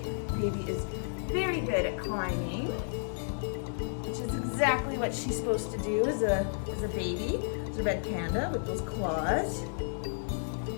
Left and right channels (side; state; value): right; silent; 56 dB below the other